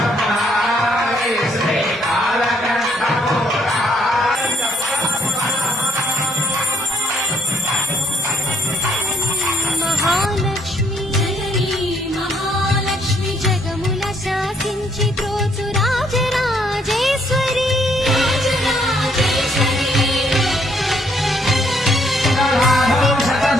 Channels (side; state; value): both; normal; correlation 0.69